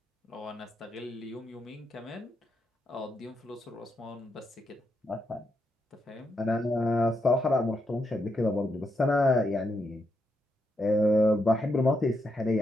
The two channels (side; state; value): both; normal; correlation 0.81